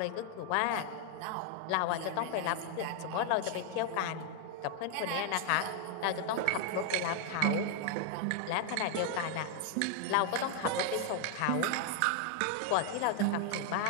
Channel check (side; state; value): both; different; correlation 0.00